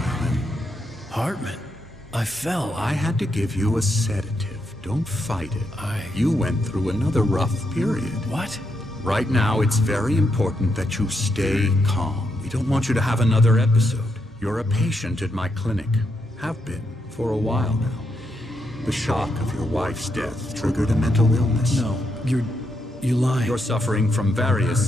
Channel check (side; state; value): both; normal; correlation 0.81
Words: Hartman. I fell. I had to give you a sedative. Don't fight it. You went through another rough period. What? Right now, it's very important that you stay calm. We don't want you to have another episode. You're a patient at my clinic. Have been for a while now. The shock of your wife's death triggered a mental illness. No, you lie. You're suffering from